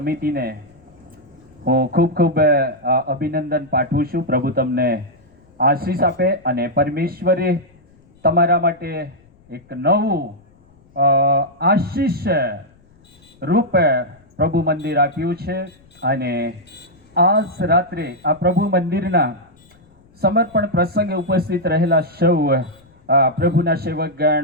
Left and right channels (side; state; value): left; noise; rumble, 30 dB below the sound